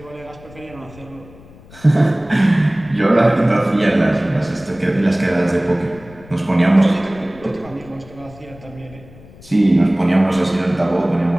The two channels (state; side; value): noise; left; rumble, 21 dB below the sound